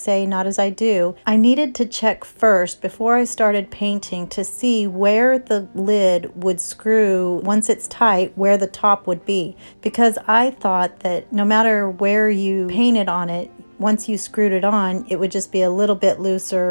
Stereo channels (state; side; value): inverted; both; correlation -1.00